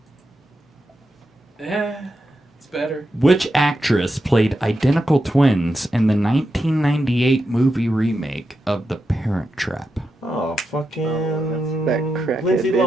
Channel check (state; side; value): normal; both; correlation 0.87